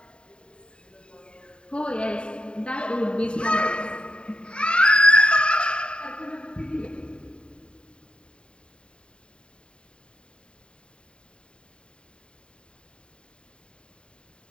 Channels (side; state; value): right; late; 0.052 ms